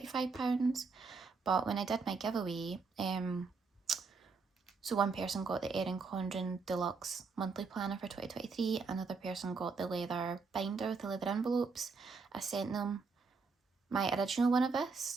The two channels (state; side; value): quieter; left; 4.6 dB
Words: But when I did my giveaway, so one person got the Erin Condren Deluxe Monthly Planner for 2023, another person got the leather binder with the leather envelopes. I sent them my original one of